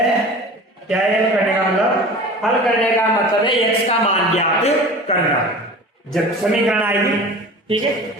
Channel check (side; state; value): both; normal; correlation 0.38